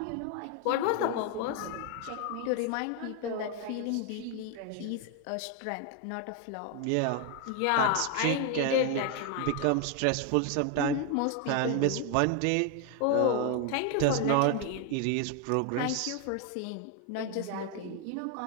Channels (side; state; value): both; different; correlation 0.01